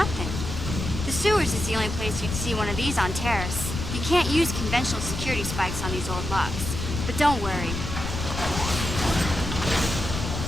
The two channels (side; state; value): left; noise; rumble, 5 dB below the sound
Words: The sewers is the only place you'd see one of these on Terrace. You can't use conventional security spikes on these old locks. But don't worry.